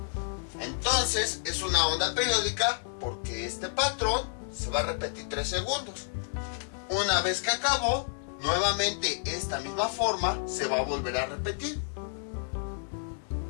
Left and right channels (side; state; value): right; silent; 58 dB below the other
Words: Entonces es una onda periódica porque este patrón se va a repetir 3 segundos. Una vez que acabó, nuevamente esta misma forma se va a volver a repetir.